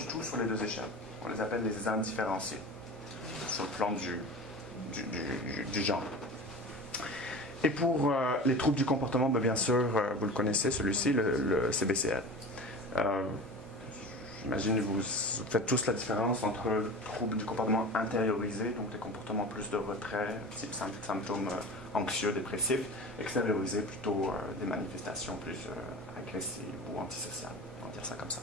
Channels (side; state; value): both; normal; correlation 0.34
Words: tout sur les deux échelles, on les appelle les indifférenciés, sur le plan du genre. Et pour les troubles du comportement, bien sûr, vous le connaissez, celui-ci, le CBCL. J'imagine que vous faites tous la différence entre le trouble du comportement intériorisé, donc des comportements plus de retrait, type symptômes anxieux, dépressifs, extériorisé, plutôt des manifestations plus agressives ou antisociales, on va dire ça comme ça.